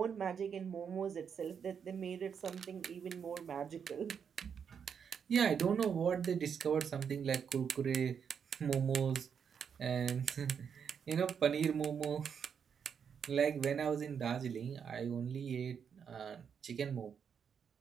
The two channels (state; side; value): quieter; left; 7.1 dB